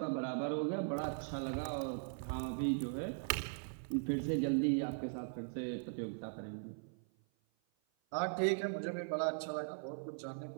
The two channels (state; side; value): silent; left; 51 dB below the other